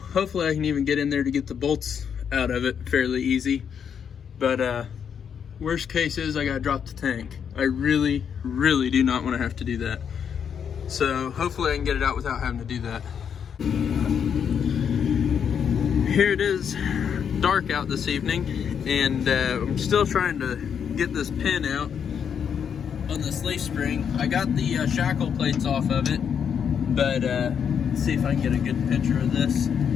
I can even get in there to get the bolts out of it fairly easy. But worst case is I gotta drop the tank. I really, really do not want to have to do that. So hopefully I can get it out without having to do that. Here it is, dark out this evening, and I'm still trying to get this pin out on this leaf spring. I got the shackle plates off of it, but let's see if I can get a good picture of this,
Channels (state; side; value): quieter; right; 7.6 dB